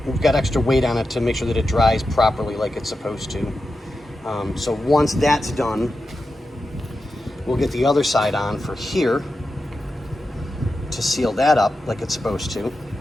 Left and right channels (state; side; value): normal; both; correlation 0.90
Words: we've got extra weight on it to make sure that it dries properly like it's supposed to. So once that's done, we'll get the other side on for here to seal that up like it's supposed to.